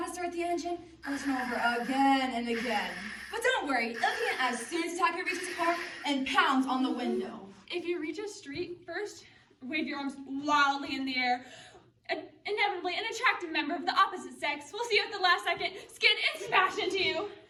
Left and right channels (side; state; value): both; identical; correlation 1.00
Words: to start the engine, go over again and again. But don't worry, it'll begin as soon as the attacker reaches the car and pounds on the window. If you reach a street, first wave your arms wildly in the air. Inevitably, an attractive member of the opposite sex will see you at the last second, skid and smash into you.